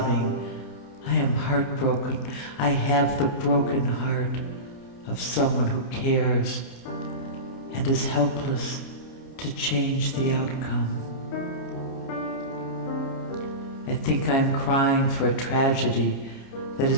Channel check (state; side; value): late; right; 29 ms